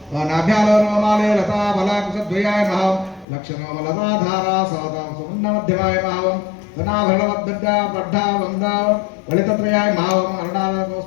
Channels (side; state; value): right; drops out; at 3.2 s